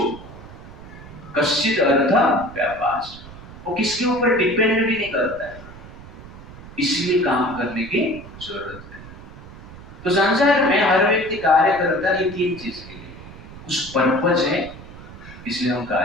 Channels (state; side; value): noise; right; rumble, 16 dB below the sound